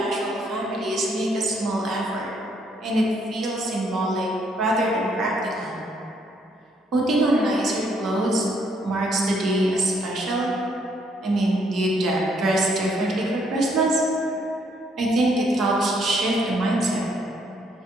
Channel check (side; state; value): both; normal; correlation 0.69